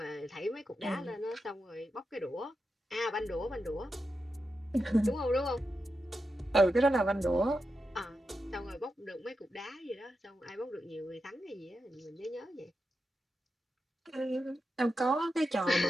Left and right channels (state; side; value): normal; both; correlation 0.88